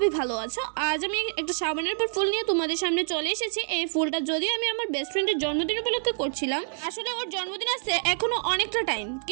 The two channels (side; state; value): left; silent; 60 dB below the other